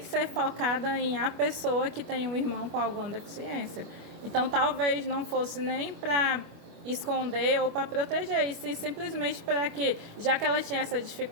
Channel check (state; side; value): late; left; 25 ms